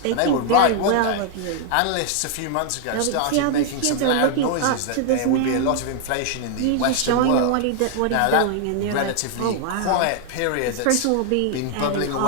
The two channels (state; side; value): different; both; correlation 0.00